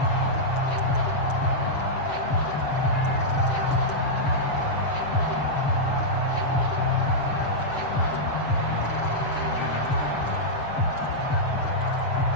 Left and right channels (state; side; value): late; right; 7.5 ms